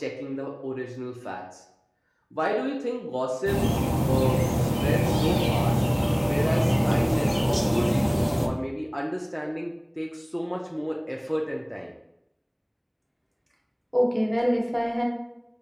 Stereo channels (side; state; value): both; identical; correlation 1.00